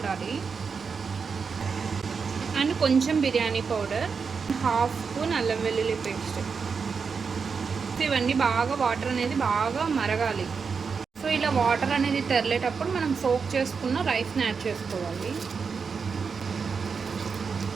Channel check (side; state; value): left; quieter; 5.5 dB